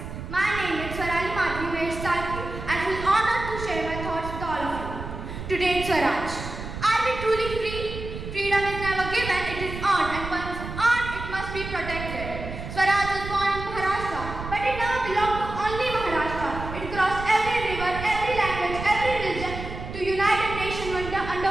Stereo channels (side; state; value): right; noise; rumble, 8 dB below the sound